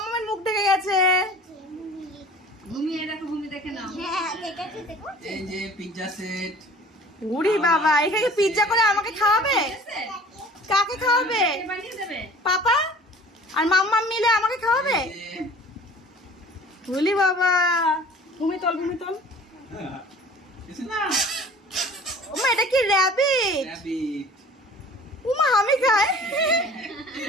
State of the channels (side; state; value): both; normal; correlation 0.47